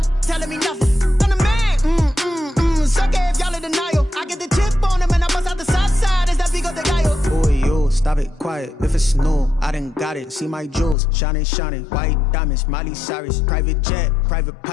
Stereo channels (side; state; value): right; drops out; at 11.0 s